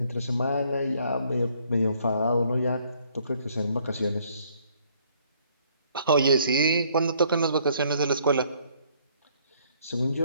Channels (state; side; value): inverted; both; correlation -0.65